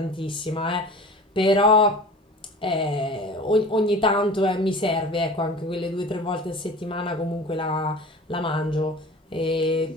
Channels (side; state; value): both; normal; correlation 0.39